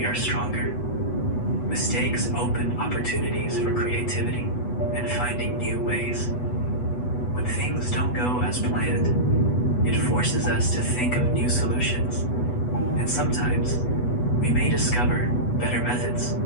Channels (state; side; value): late; right; 8.1 ms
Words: are stronger. Mistakes open opportunities for creativity and finding new ways. When things don't go as planned, it forces us to think of new solutions, and sometimes we may discover better methods.